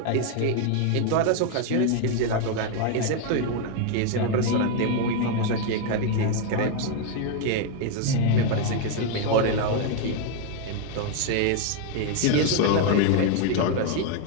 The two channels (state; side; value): different; both; correlation 0.01